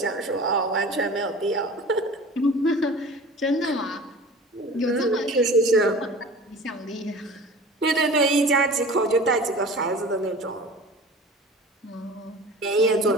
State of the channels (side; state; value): both; normal; correlation 0.40